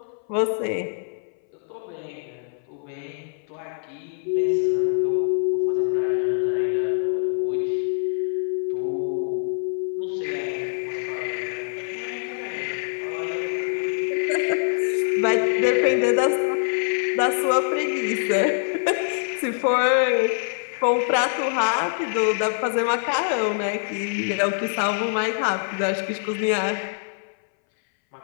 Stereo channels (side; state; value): right; silent; 60 dB below the other